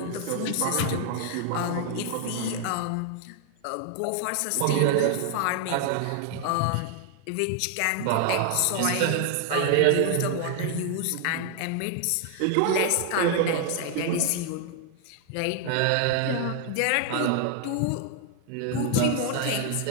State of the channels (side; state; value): both; different; correlation 0.00